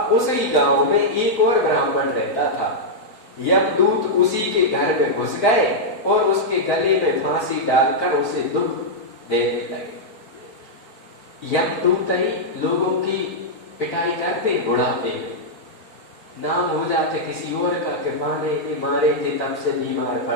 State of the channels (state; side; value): late; right; 4.5 ms